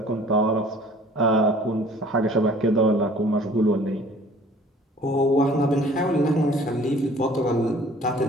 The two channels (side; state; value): both; normal; correlation 0.51